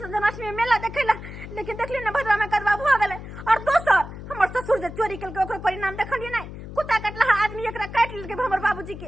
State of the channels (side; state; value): left; noise; hum, 12 dB below the sound